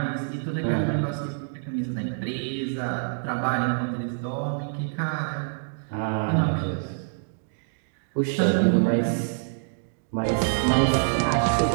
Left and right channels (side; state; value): left; silent; digital silence